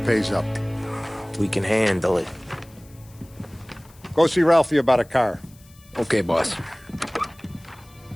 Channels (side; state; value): left; noise; hiss, 27 dB below the sound